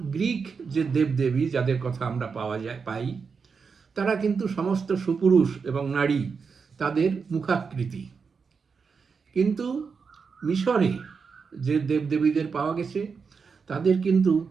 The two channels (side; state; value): left; quieter; 5.5 dB